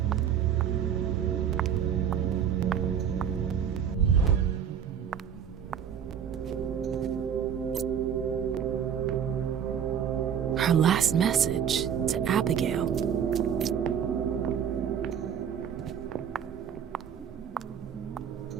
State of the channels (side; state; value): left; quieter; 8.3 dB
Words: Her last message to Abigail.